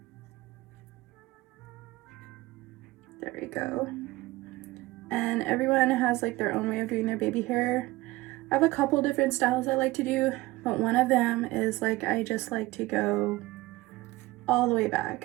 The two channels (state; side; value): quieter; left; 19.6 dB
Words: There we go. And everyone has like their own way of doing their baby hair. I have a couple different styles I like to do, but one of them is like I just like to go all the way